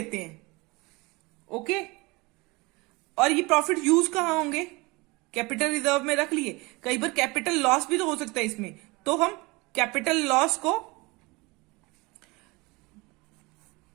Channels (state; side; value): quieter; left; 24.6 dB